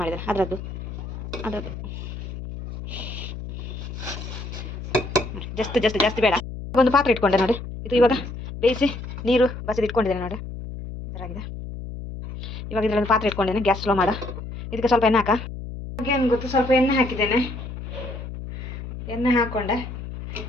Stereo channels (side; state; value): left; noise; hum, 9 dB below the sound